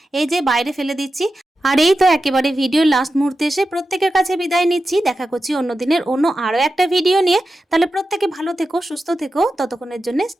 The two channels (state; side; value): normal; both; correlation 0.91